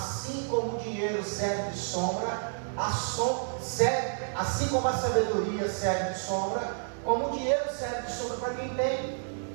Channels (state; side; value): silent; left; digital silence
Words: como o dinheiro serve de sombra, assim como a sabedoria serve de sombra, como o dinheiro serve de sombra para quem tem.